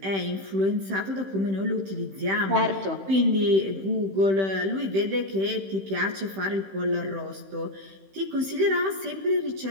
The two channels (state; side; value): late; left; 15 ms